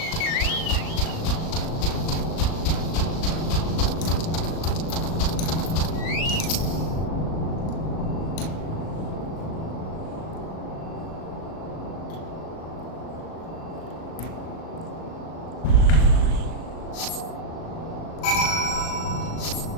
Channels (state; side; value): late; right; 37 ms